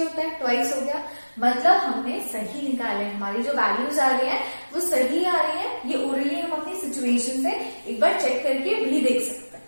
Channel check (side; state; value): both; inverted; correlation -1.00